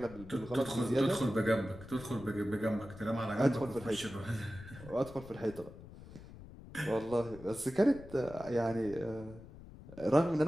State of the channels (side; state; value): left; noise; rumble, 16 dB below the sound